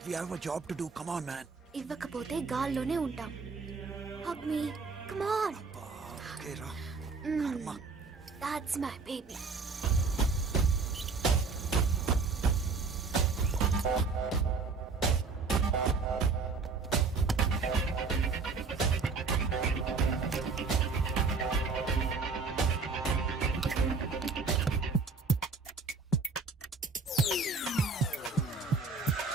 we have a job to do. Come on, man. ఇవ్వకపోతే గాల్లోనే ఉంటాం. Hug me. Come on. Okay, రా. కర్మ. That's my baby.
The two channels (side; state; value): left; quieter; 4.5 dB